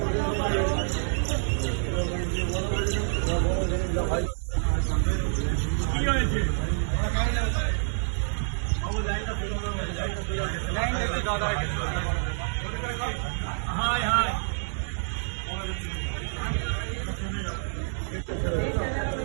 কি হয়েছে? হাই হাই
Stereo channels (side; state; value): left; silent; 60 dB below the other